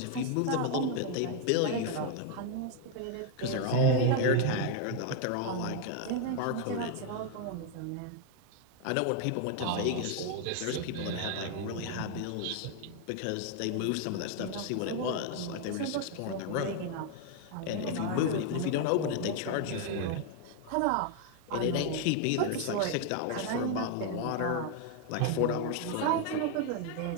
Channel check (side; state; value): both; different; correlation 0.00